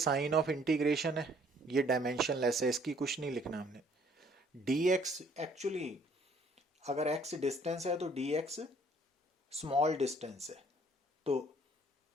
ऑफ इंटीग्रेशन है, ये डायमेंशनलेस है, इसकी कुछ नहीं लिखना हमने। dx एक्चुअली अगर x डिस्टेंस है तो dx स्मॉल डिस्टेंस है, तो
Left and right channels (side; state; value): both; normal; correlation 0.60